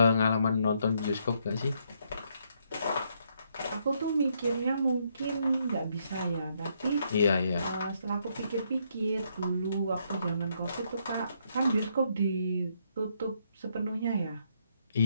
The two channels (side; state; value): both; inverted; correlation -0.73